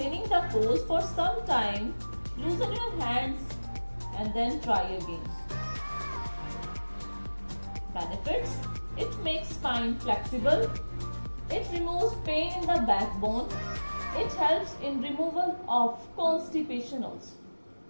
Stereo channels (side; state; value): both; inverted; correlation -1.00